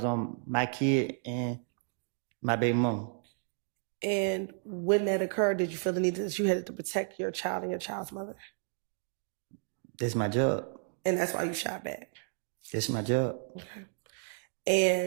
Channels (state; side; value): silent; left; 56 dB below the other